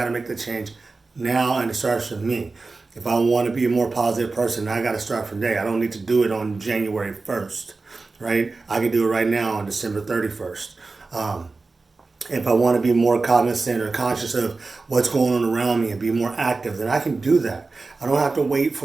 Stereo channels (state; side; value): quieter; left; 3.8 dB